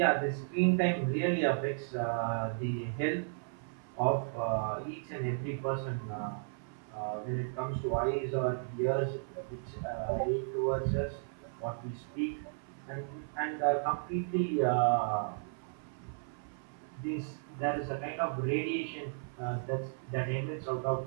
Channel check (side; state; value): left; silent; 55 dB below the other